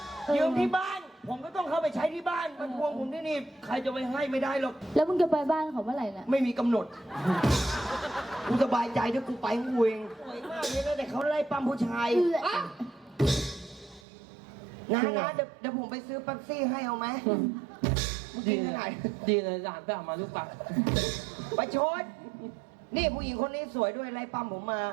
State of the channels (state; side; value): drops out; left; at 14.0 s